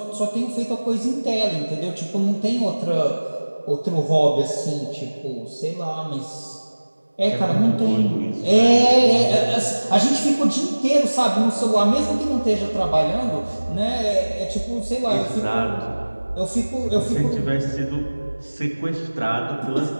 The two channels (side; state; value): both; inverted; correlation -1.00